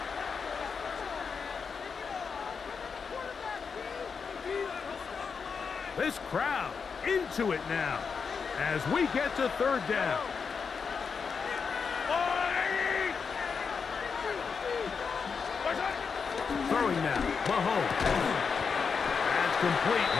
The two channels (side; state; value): right; quieter; 5.7 dB